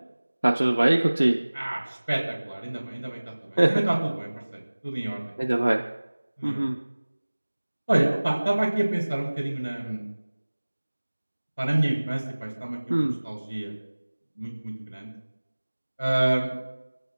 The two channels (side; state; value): both; inverted; correlation -1.00